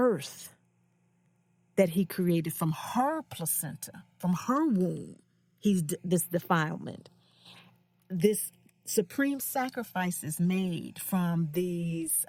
that he created from her placenta, from her womb. This defilement. This supreme sacrifice is made from these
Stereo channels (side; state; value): both; identical; correlation 1.00